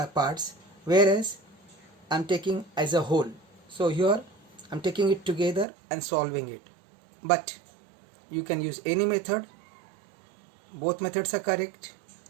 parts, whereas I am taking as a whole. So here I am taking it together and solving it. But you can use any method. Both methods are correct,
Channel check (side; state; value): left; drops out; at 5.7 s